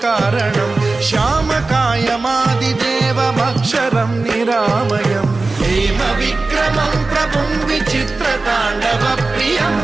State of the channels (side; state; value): left; quieter; 3.5 dB